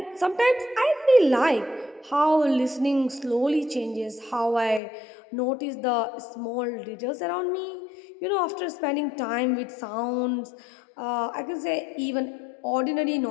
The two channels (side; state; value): right; drops out; at 4.8 s